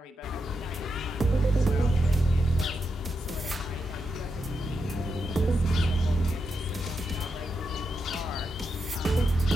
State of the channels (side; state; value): both; normal; correlation 0.85